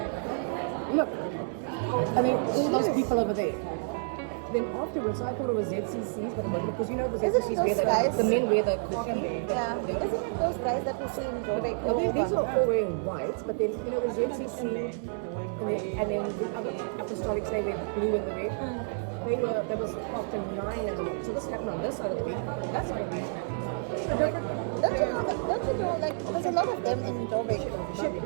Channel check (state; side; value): silent; left; digital silence